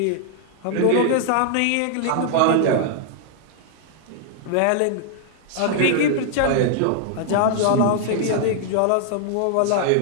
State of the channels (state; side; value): different; both; correlation 0.00